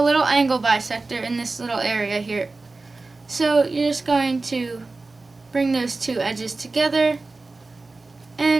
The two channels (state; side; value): quieter; left; 3.5 dB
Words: little angle bisector in this little area here. So you're just going to bring those two edges together